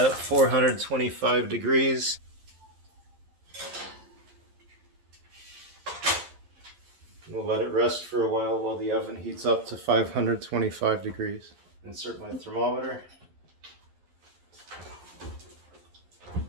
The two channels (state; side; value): late; left; 11 ms